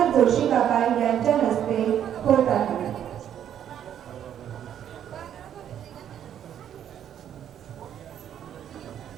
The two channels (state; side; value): quieter; left; 9.9 dB